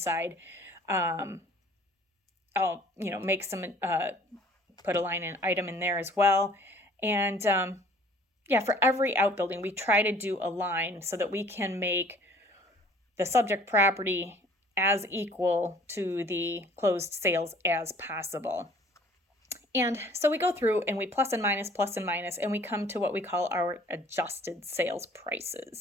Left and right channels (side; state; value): both; normal; correlation 0.53